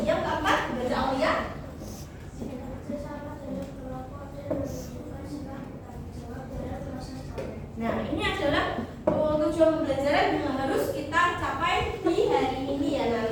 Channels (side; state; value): both; identical; correlation 1.00